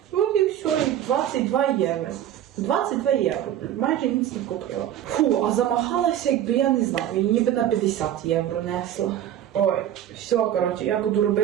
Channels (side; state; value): left; quieter; 11.2 dB